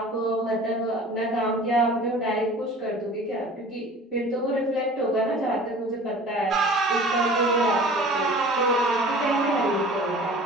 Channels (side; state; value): both; normal; correlation 0.44